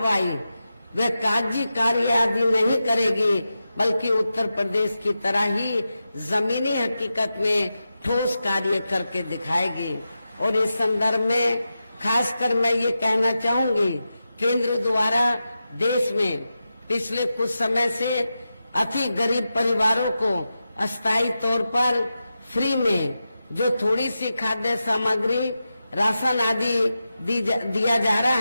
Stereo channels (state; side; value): inverted; both; correlation -0.91